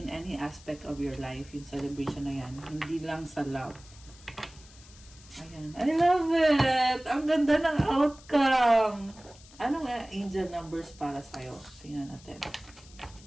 any aspect of your life, yung celebration na yan. Hindi lang sa love. Ayan. I love it! Ang ganda ng outcome! Ano nga angel numbers para sa'yo? Tingnan natin.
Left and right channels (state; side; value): noise; left; hiss, 22 dB below the sound